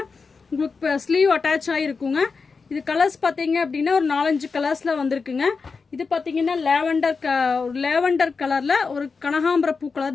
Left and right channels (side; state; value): right; quieter; 4.8 dB